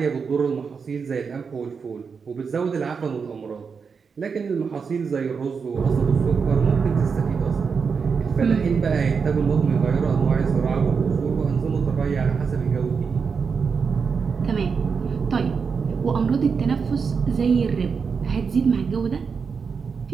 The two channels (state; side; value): quieter; left; 5.7 dB